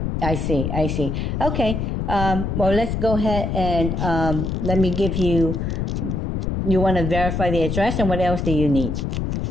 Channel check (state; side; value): noise; left; rumble, 1 dB below the sound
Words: I see. Okay. Well, let's go ahead and let me give you. You want to verify the address, and what else do you need?